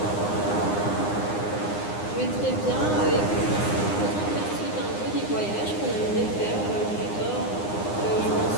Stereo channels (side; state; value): right; late; 9.8 ms